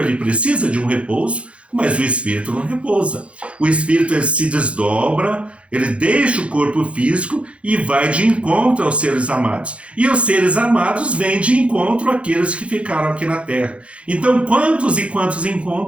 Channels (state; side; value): late; left; 0.061 ms